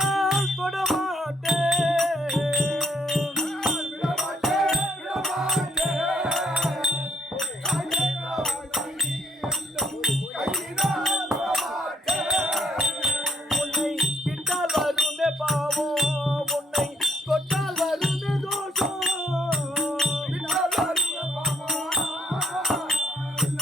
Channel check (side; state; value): both; normal; correlation 0.69